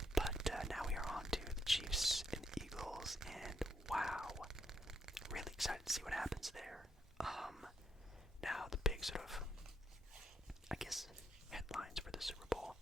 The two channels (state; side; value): normal; both; correlation 0.77